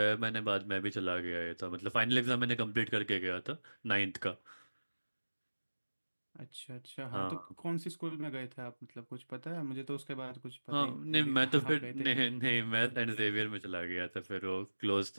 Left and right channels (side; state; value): both; inverted; correlation -1.00